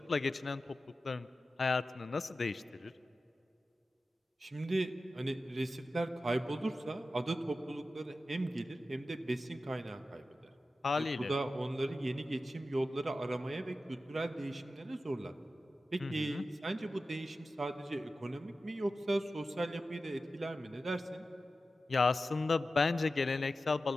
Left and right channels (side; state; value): both; normal; correlation 0.94